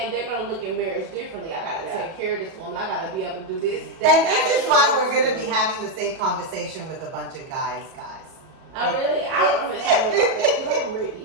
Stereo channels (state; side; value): late; left; 37 ms